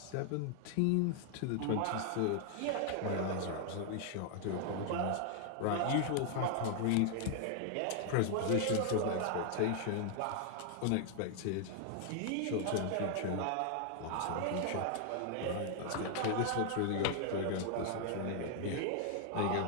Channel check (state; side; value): different; both; correlation 0.00